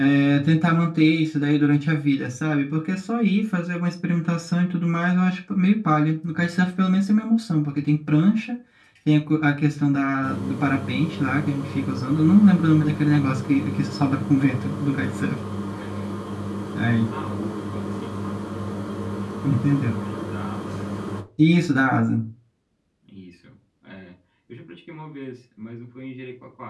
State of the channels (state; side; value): identical; both; correlation 1.00